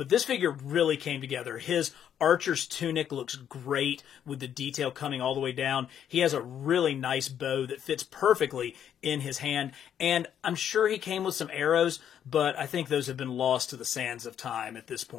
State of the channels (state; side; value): quieter; right; 9.4 dB